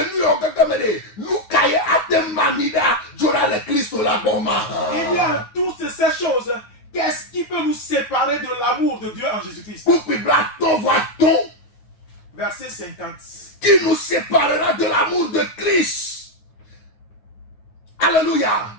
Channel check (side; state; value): right; late; 9.5 ms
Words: nu o gagamede, nu kaye ate manida, jora le Kristo la boma. Il y a toutes ces choses. Qu'est-ce qui peut nous séparer de l'amour de Dieu en Jésus-Christ? Pour que ton voit-on, Verset 50. qui nous séparera de l'amour de Christ. Alléluia.